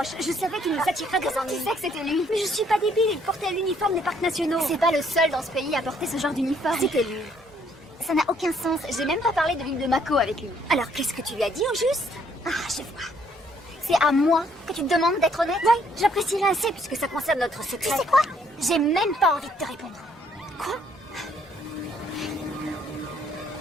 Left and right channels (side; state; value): both; normal; correlation 0.66